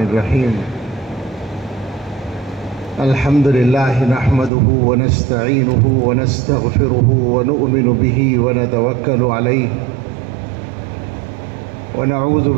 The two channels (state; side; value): drops out; left; at 4.5 s